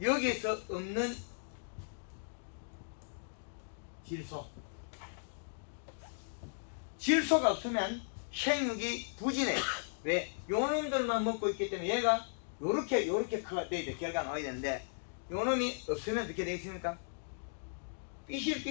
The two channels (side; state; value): right; silent; digital silence